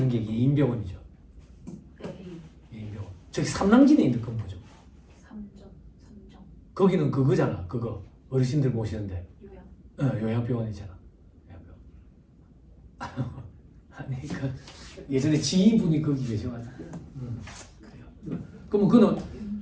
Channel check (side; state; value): both; identical; correlation 1.00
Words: 게 예인병원이죠. 예인병원. 저기 삼랑진에 있는 건 뭐죠? 삼정. 거기는 그거잖아. 그거 어르신들 모시는데. 요양. 요양병원이잖아. 요양병원. 아니 그 예전에 지인분이 거기 계셔가지고. 그래요. 그럼 그는